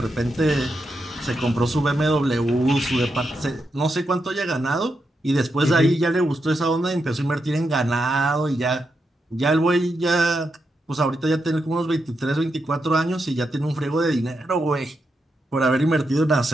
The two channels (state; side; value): normal; both; correlation 0.85